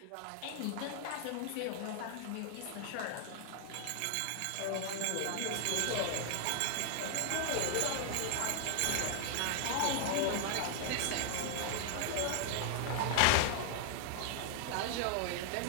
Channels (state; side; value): different; both; correlation 0.00